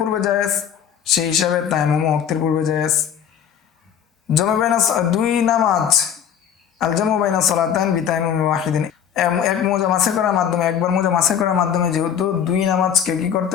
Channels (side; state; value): right; quieter; 8.6 dB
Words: জায়েজ, সেই হিসাবে তায়াম্মুম ওয়াক্তের পূর্বে জায়েজ। জামু বাইনা দুই নামাজ, আল জামু বাইনা সালাতান বিতায়াম্মুম ওয়াহিদিন, এক মাসে করার মাধ্যমে, একবার মাসে করার মাধ্যমে যেহেতু দুই নামাজকে কি